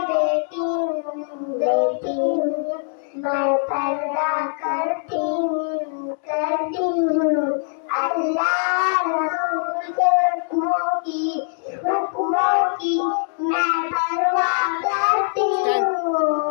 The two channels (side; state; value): right; silent; digital silence